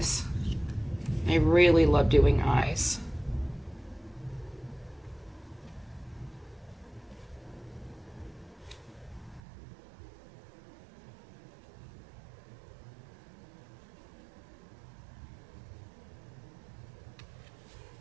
I really love doing eyes.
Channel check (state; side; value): drops out; left; at 9.4 s